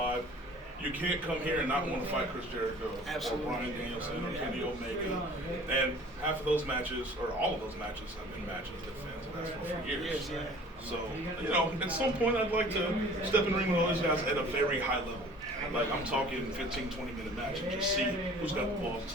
You can't come here and not want to fight Chris Jericho or Bryan Danielson or Kenny Omega. And half of those matches, or all of those matches, have been matches that fans have asked for years. So, you know, at some point I'd like to step in the ring with all these guys at a very high level. Like, I'm talking 15, 20-minute match and just see who's got the balls to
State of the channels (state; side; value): normal; both; correlation 0.48